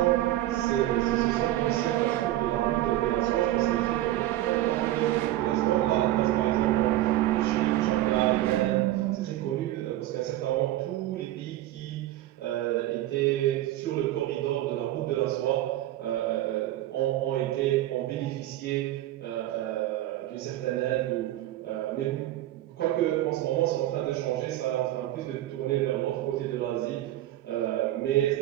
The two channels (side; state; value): left; quieter; 14.7 dB